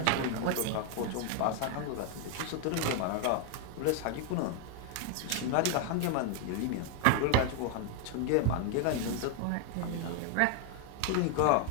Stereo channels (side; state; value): both; different; correlation 0.00